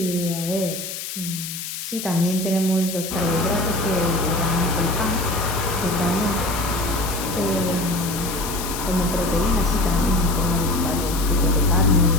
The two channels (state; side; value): noise; left; hiss, 7 dB below the sound